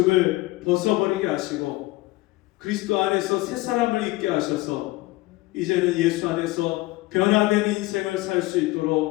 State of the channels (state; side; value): quieter; right; 20.0 dB